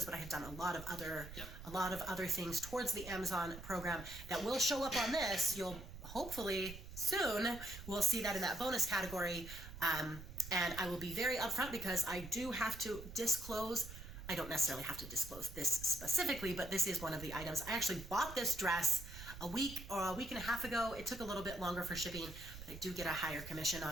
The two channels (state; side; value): noise; right; rumble, 12 dB below the sound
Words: but I had done a lot of other things towards the Amazon program that will show up on this. You'll hopefully soon, we'll see that in that bonus category. And I will be very upfront because I do have to disclose I don't necessarily have to disclose this specifically, but this is one of the items. I actually bought this dress a week or a week and a half ago. It took a little bit longer for shipping, but I do get a higher commission